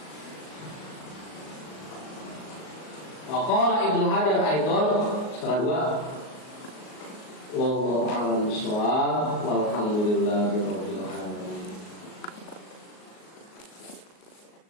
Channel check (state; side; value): late; right; 38 ms